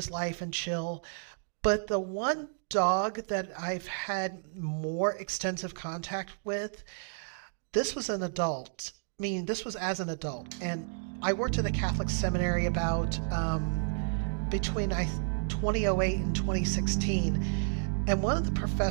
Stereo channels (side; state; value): left; silent; digital silence